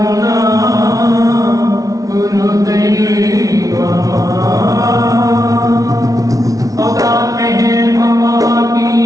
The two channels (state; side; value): late; left; 0.17 ms